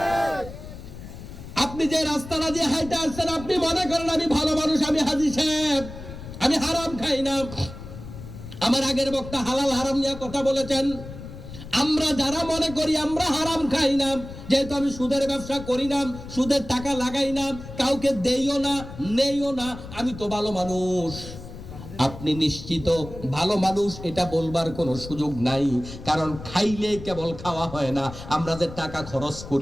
আপনি যে রাস্তাটা দিয়ে হাইটা আসছেন, আপনি মনে করেন আমি ভালো মানুষ, আমি হাজী সাহেব, আমি হারাম খাই না। আমার আগের বক্তা হালাল হারাম নিয়ে কথা বলেছেন। আমরা যারা মনে করি আমরা হারাম খাই না, যেহেতু আমি সুদের ব্যবসা করি না, সুদের টাকা লাগাই না, কাউকে দেইও না, নেইও না, আমি তো ভালো মানুষ। আপনি নিশ্চিত ভালো মানুষ, এটা বলবার কোনো সুযোগ নাই। কারণ খাইলে কেবল খাওয়া হয় না। আমরা যে টাকা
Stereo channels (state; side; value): noise; left; rumble, 13 dB below the sound